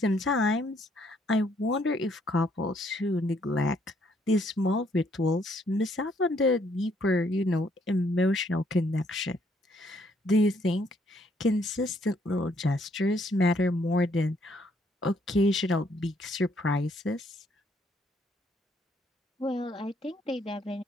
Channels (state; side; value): normal; both; correlation 0.68